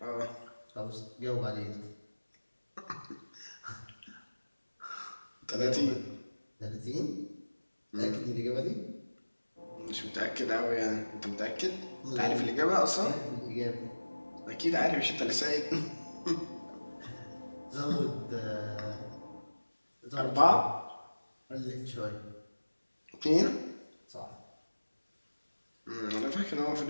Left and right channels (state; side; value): inverted; both; correlation -1.00